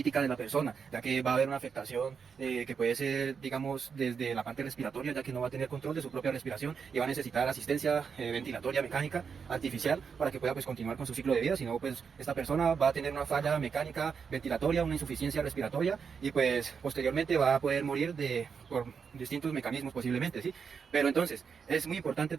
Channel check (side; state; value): left; quieter; 6.2 dB